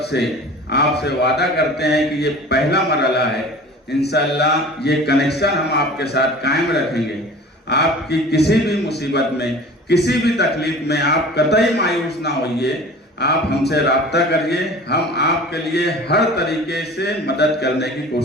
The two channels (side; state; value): both; normal; correlation 0.41